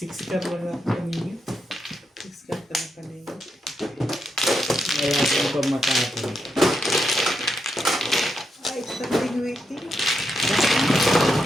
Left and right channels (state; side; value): normal; both; correlation 0.83